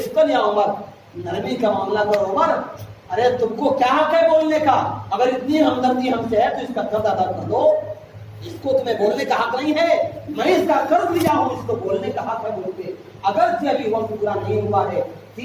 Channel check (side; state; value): both; identical; correlation 1.00